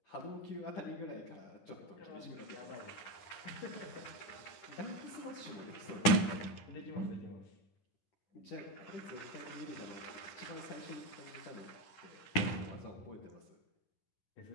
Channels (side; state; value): right; late; 10 ms